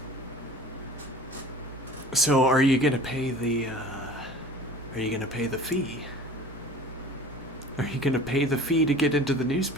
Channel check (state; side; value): normal; both; correlation 0.42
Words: So are you gonna pay the fee? Are you gonna pay the fee to get into the